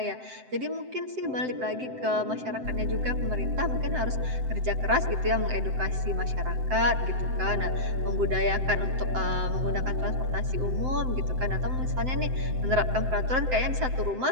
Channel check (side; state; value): left; late; 7.8 ms